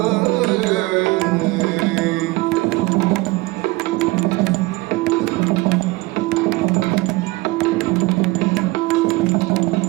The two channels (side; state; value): left; quieter; 22.2 dB